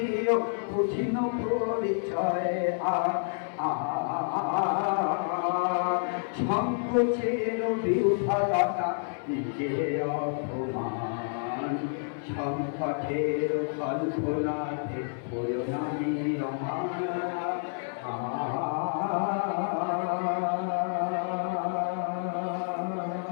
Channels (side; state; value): right; silent; 59 dB below the other